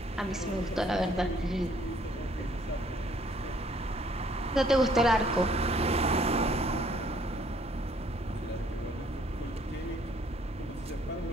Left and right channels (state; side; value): normal; both; correlation 0.63